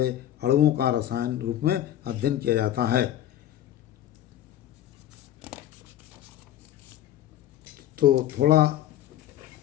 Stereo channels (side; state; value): right; quieter; 12.1 dB